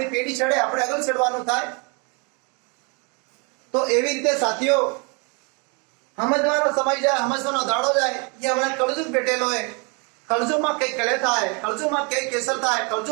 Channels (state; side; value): quieter; left; 32.9 dB